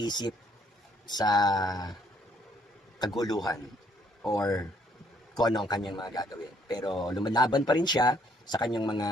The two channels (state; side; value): normal; both; correlation 0.67